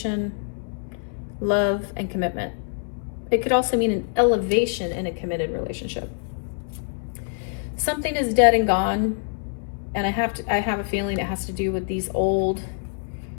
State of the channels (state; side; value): silent; right; 62 dB below the other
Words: love, and commitment. It could also mean an elevation in a committed relationship. Something is dead and gone, and I have a feeling it has to do with these old